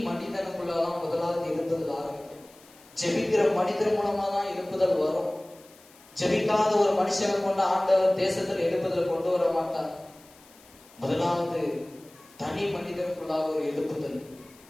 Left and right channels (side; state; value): left; noise; hiss, 25 dB below the sound